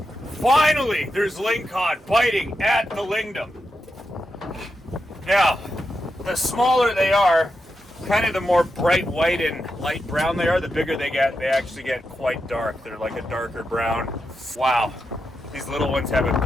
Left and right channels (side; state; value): both; normal; correlation 0.87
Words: Finally, there's lingcod biting at the lingdom. Now, the smaller they are, kind of the more bright white and light brown they are, the bigger they get. They actually get quite dark. They're like a darker brown. Wow. These little ones have